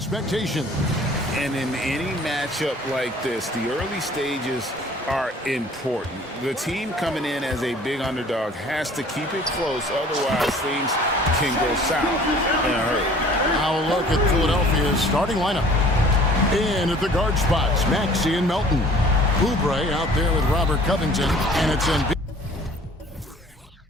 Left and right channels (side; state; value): both; normal; correlation 0.51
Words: And in any matchup like this, the early stages are important. The team coming in as a big underdog has to keep it close, otherwise things can go south in a hurry. Now a look at Philadelphia's starting lineup. In at the guard spots, Maxey and Melton. Oubre out there with Robert Covington, and it's in.